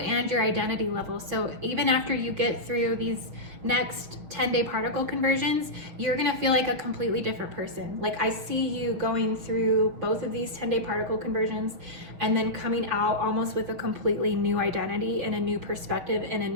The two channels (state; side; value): late; left; 6.4 ms